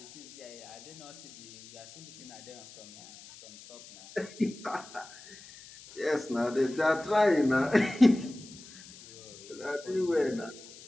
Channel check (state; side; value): noise; left; hiss, 18 dB below the sound